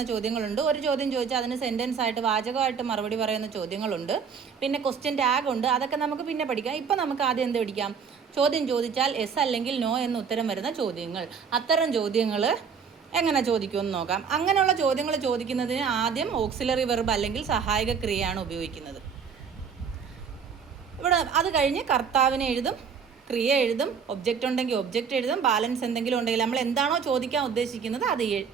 ചോദ്യങ്ങളുണ്ട്. ഒരു ചോദ്യം ചോദിച്ചാൽ അതിന് സെൻറ്റൻസ് ആയിട്ട് വാചകമായിട്ട് മറുപടി പറയുന്ന ചോദ്യങ്ങളുണ്ട്. പിന്നെ ക്വസ്റ്റ്യൻ ടാഗ് ഉണ്ട്. അതൊക്കെ നമുക്ക് പിന്നെ പഠിക്കാം. ഇപ്പം നമുക്ക് ആദ്യം എന്ത് പഠിക്കാം? ചോദ്യം ചോദിച്ചാൽ യെസ് അല്ലെങ്കിൽ നോ എന്ന് ഉത്തരം വരുന്ന ചോദ്യങ്ങൾ. അത്തരം ചോദ്യങ്ങൾ എങ്ങനെ ചോദിക്കുമെന്ന് നോക്കാം. അങ്ങനെയുള്ള ചോദ്യങ്ങൾ ചോദിക്കുന്നതിന് ആദ്യം ഓക്സിലറി വെർബ് അല്ലെങ്കിൽ സഹായക ക്രിയയാണ് ഉപയോഗിക്കുന്നത്. ഇവിടെ അത് കഴിഞ്ഞ് കർത്താവിനെ എഴുതും, ക്രിയ എഴുതും, ഒബ്ജക്റ്റ് ഉണ്ടെങ്കിൽ ഒബ്ജക്റ്റ് എഴുതും, ബാലൻസ് എന്തെങ്കിലും ഉണ്ടെങ്കിൽ നമ്മൾ എന്താണോ ചോദിക്കാൻ ഉദ്ദേശിക്കുന്നത് അത്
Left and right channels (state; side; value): quieter; left; 6.4 dB